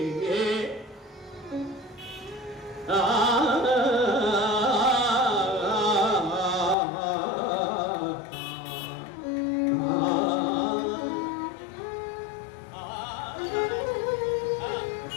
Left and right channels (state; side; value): drops out; right; at 6.8 s